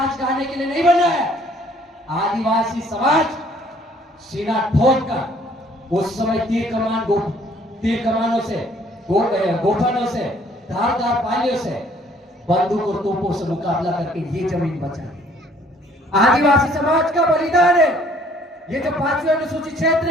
गाने के लिए नहीं बना है। आदिवासी समाज सीना ठोक कर उस समय तीर कमानों से, गोफनों से, धारदार पालियों से, बंदूक और तोपों से मुकाबला करके ये जमीन बचा। आदिवासी समाज का बलिदान है। ये जो 5वीं अनुसूचित क्षेत्र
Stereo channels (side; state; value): both; normal; correlation 0.59